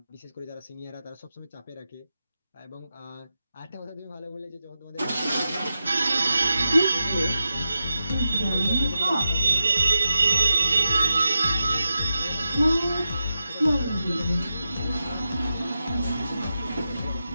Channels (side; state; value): both; inverted; correlation -0.90